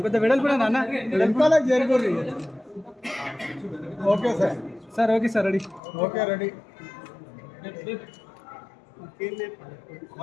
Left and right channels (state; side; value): drops out; right; at 5.8 s